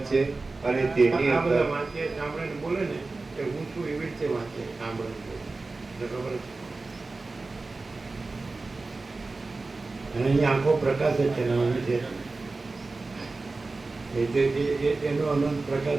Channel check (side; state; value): left; quieter; 3.6 dB